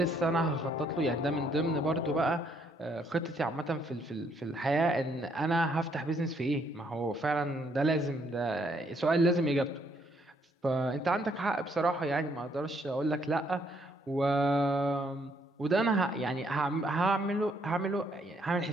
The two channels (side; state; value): both; normal; correlation 0.69